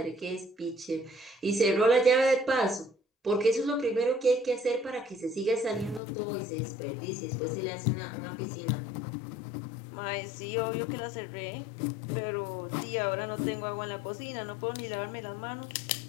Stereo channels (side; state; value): right; drops out; at 6.0 s